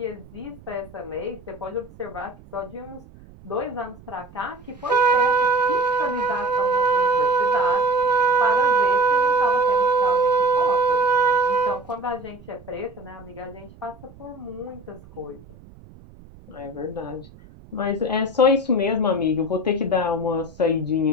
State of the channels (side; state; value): right; noise; rumble, 22 dB below the sound